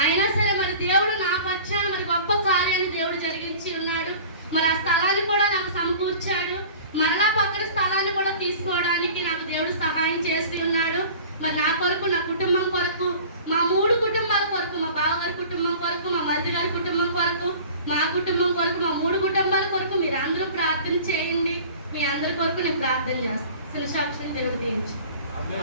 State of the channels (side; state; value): both; inverted; correlation -0.43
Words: అయినా సరే మరి దేవుడు నా పక్షాన మరి గొప్ప కార్యాన్ని దేవుడు జరిగించి ఉన్నాడు. మరి ఆ స్థలాన్ని కూడా నాకు సమకూర్చాడు. మరలా పక్కన స్థలాన్ని కూడా తీసుకోవడానికి నాకు దేవుడు సహాయం చేసి ఉన్నాడు. మరి నా కొరకు, నా కుటుంబం కొరకు, మా 3 కుటుంబాల కొరకు, మా బావగారి కుటుంబం కొరకు, మా మరిది గారి కుటుంబం కొరకు, మా కుటుంబం కొరకు, మా 3 కుటుంబాల కొరకు మీరు అందరూ ప్రార్థన చేయండి. మీ అందరి కొరకు నేను ప్రార్థన చేస్తాను. సాక్షిని దేవుడు దీవించు.